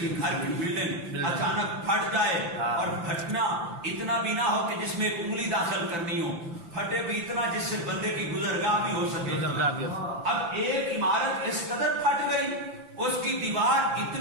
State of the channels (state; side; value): late; left; 5.9 ms